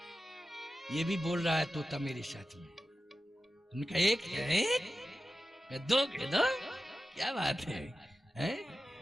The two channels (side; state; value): both; normal; correlation 0.93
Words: ये भी बोल रहा है तोता मेरे साथ में। उनका 1 है, 2 कह दो, क्या बात है?